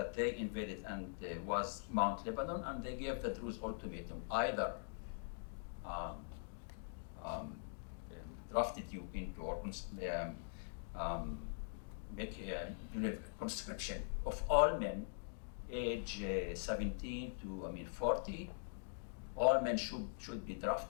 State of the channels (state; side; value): silent; right; digital silence